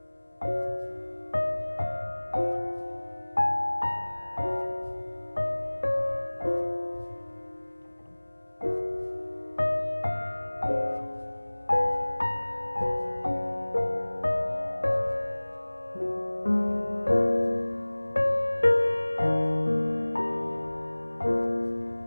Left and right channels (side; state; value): both; inverted; correlation -1.00